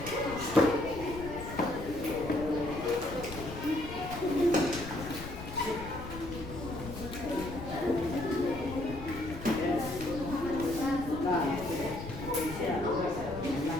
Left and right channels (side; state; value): left; noise; rumble, 11 dB below the sound